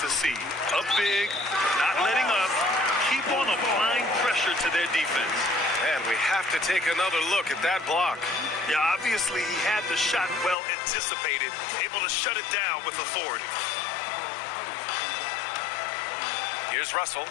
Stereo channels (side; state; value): right; drops out; at 10.6 s